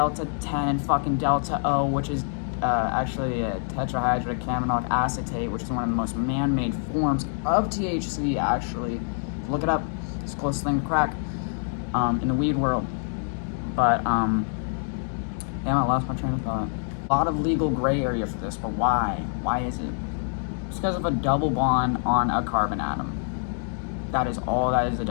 10 and fucking Delta O, which is actually a tetrahydrocannabinolic acetate, which is one of the most man-made forms of THC, actually. Look it up. It's the closest thing to crack in the weed world. But, damn, I lost my train of thought. A lot of legal gray area for this, but why? Why is it? It's because of a double bond on a carbon atom. That is all that is the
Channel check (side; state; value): right; silent; digital silence